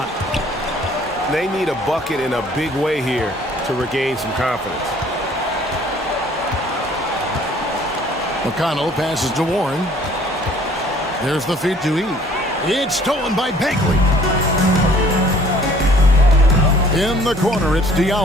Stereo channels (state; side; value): normal; both; correlation 0.56